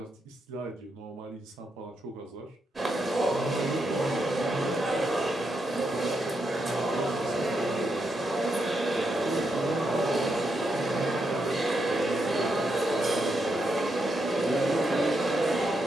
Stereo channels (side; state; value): both; normal; correlation 0.82